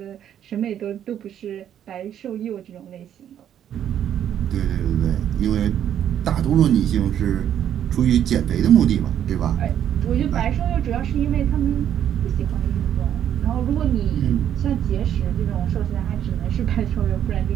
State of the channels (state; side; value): quieter; left; 10.0 dB